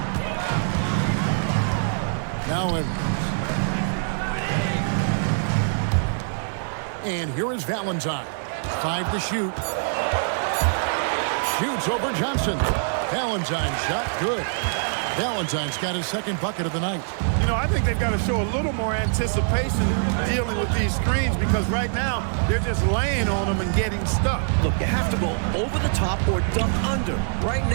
Now Edwards. And here is Valentine. 5 to shoot. Shoots over Johnson. Valentine shot good. Valentine's got his second bucket of the night. You know, I think they've got to show a little more anticipation dealing with these screens because right now they're just laying on them and getting stuck. Look, you have to go over the top or duck under. Right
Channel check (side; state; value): left; silent; digital silence